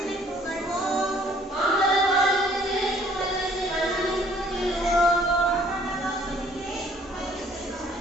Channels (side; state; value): both; normal; correlation 0.59